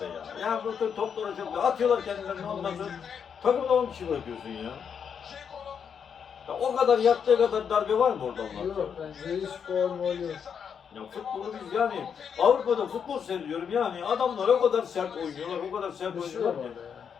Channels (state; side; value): quieter; right; 7.2 dB